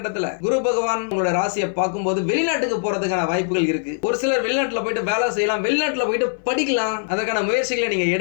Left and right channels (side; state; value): right; silent; 58 dB below the other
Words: குரு பகவான் உங்களோட ராசியை பார்க்கும்போது வெளிநாட்டுக்கு போறதுக்கான வாய்ப்புகள் இருக்கு. ஒரு சிலர் வெளிநாட்டுல போயிட்டு வேலை செய்யலாம், வெளிநாட்டுல போயிட்டு படிக்கலாம், அதற்கான முயற்சிகளை நீங்க